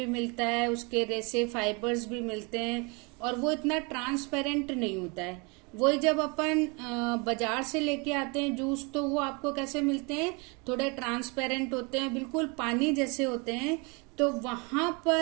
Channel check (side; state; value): left; quieter; 30.2 dB